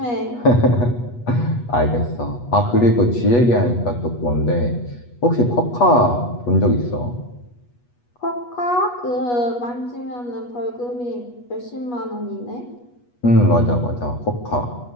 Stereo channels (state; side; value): late; right; 8.3 ms